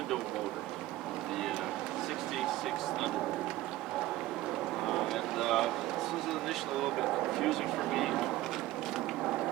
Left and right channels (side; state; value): left; quieter; 16.2 dB